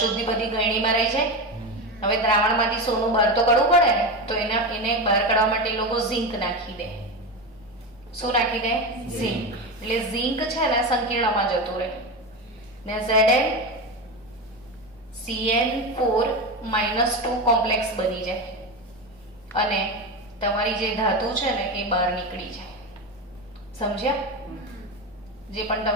બધી ગળણીમાં રહી જાય. હવે દ્રાવણમાંથી સોનું બહાર તો કાઢવું પડે ને, તો એને બહાર કાઢવા માટે એ લોકો ઝિંક નાખી દે. શું નાખી દે? ઝિંક. એટલે ઝિંક છે ને સંકીર્ણમાં જતું રહે ને ZnCN4-2 કોમ્પ્લેક્સ બની જાય અને તમારી જે ધાતુ છે ને એ બહાર નીકળી જાય. સમજ્યા? જે પણ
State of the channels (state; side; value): normal; both; correlation 0.19